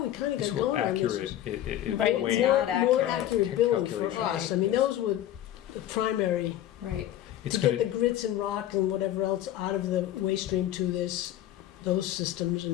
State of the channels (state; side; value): quieter; right; 12.5 dB